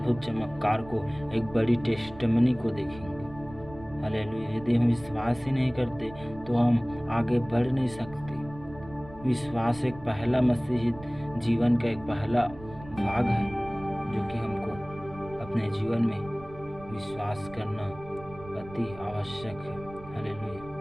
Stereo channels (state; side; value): noise; right; rumble, 17 dB below the sound